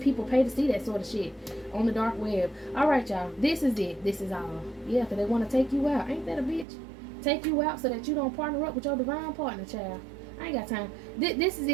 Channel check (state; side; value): drops out; left; at 6.7 s